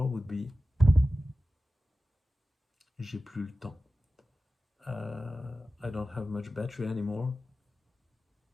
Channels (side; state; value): both; normal; correlation 0.95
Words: would be j'ai plus le temps. I don't have much battery anymore.